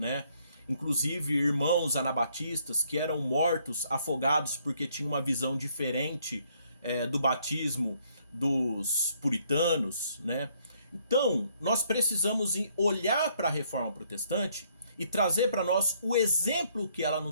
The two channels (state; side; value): inverted; both; correlation -0.68